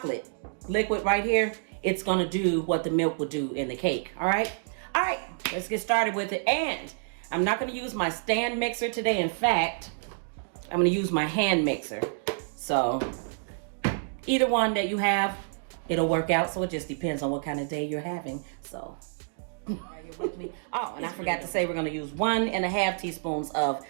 liquid right here, it's gonna do what the milk would do in the cake. All right, let's get started with it. And I'm not gonna use my stand mixer today. In fact, I'm gonna use my hand mixer. So either one that you have, it'll work out. So it just depends on what kind of day you're having. So are you with me? Oh, and I forgot to say, we're going to use 1.5 teaspoons of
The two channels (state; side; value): silent; left; digital silence